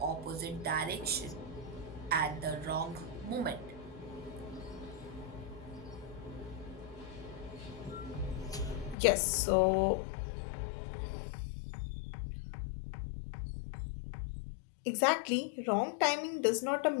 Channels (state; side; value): drops out; right; at 9.0 s